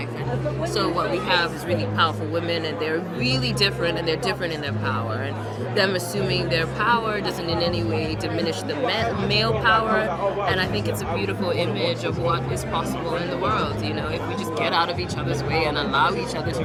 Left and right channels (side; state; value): both; identical; correlation 1.00